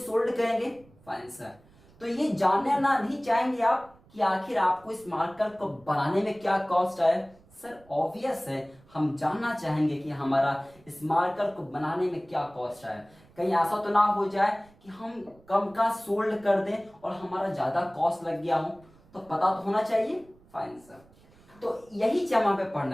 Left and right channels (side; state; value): right; noise; rumble, 28 dB below the sound